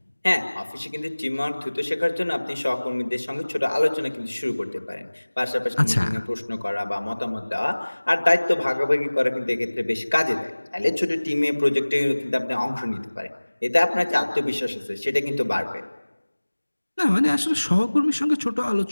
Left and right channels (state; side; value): inverted; both; correlation -1.00